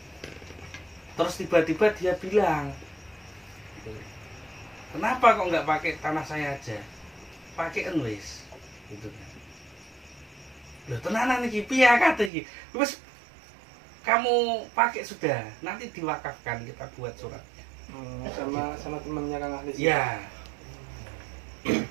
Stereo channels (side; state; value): left; drops out; at 12.3 s